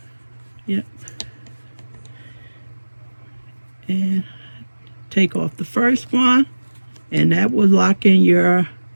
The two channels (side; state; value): both; inverted; correlation -1.00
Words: Yep. And take off the first one and that will lock in your